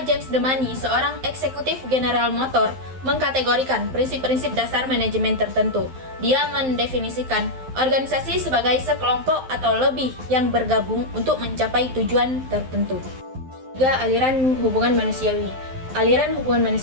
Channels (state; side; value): late; left; 12 ms